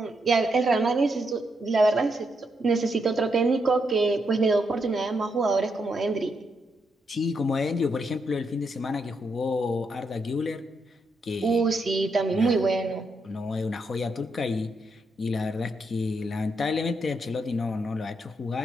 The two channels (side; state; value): both; normal; correlation 0.80